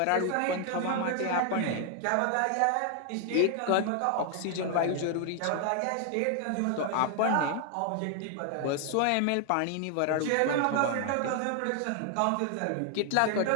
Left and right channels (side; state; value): both; different; correlation 0.00